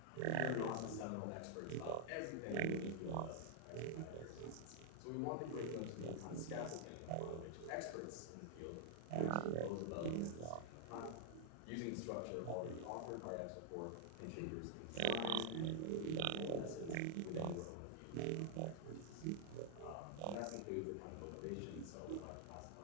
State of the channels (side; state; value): both; different; correlation 0.00